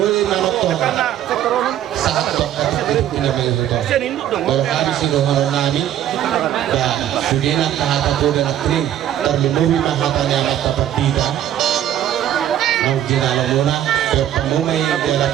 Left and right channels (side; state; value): left; quieter; 11.4 dB